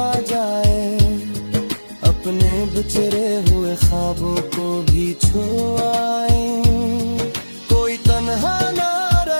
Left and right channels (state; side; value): inverted; both; correlation -1.00